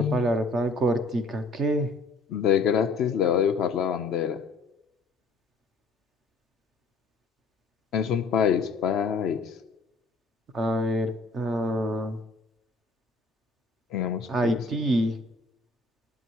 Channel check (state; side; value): quieter; right; 3.4 dB